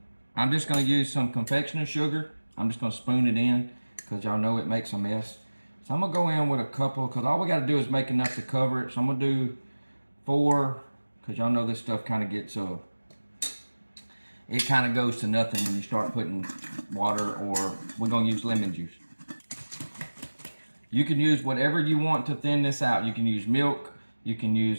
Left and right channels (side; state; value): both; inverted; correlation -1.00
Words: I'm just going to use some confectioner's sugar. I'm just going to spoon it in because y'all know it makes a mess. So I'm going to go in with a couple because all we got to do is make enough to cover it. So I'm going to do 4 because y'all know this stuff kind of gets, it kind of goes to nothing when you start putting water, or we're going to use lemon juice. You can use whatever you want to thin this out. You can use milk. You can